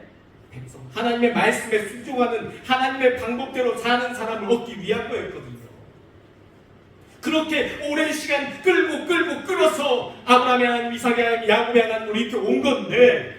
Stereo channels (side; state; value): both; identical; correlation 1.00